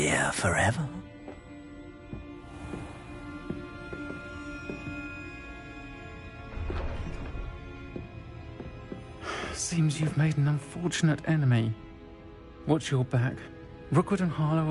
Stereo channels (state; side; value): identical; both; correlation 1.00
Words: forever. Seems you've made an unfortunate enemy. Watch your back. Rookwood and Harlow